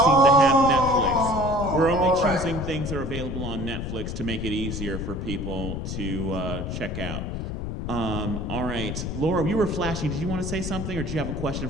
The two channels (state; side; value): noise; left; rumble, 4 dB below the sound